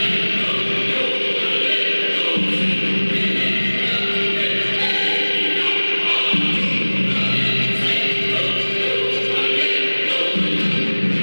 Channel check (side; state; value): both; inverted; correlation -1.00